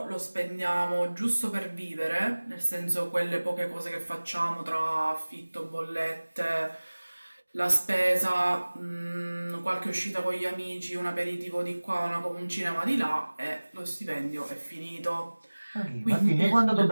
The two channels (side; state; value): both; inverted; correlation -1.00